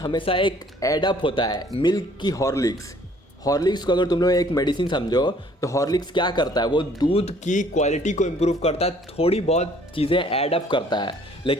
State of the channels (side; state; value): both; normal; correlation 0.59